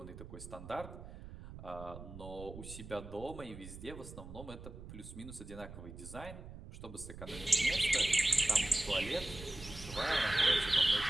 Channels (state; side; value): noise; right; rumble, 13 dB below the sound